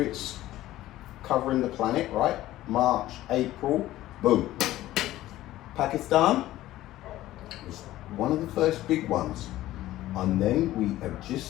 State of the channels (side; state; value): right; quieter; 15.2 dB